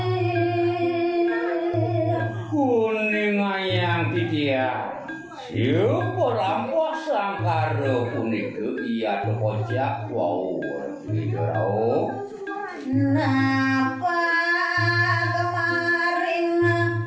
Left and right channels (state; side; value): identical; both; correlation 1.00